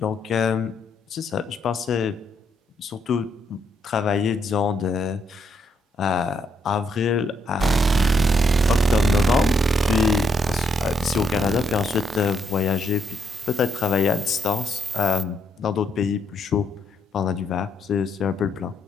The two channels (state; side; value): normal; both; correlation 0.75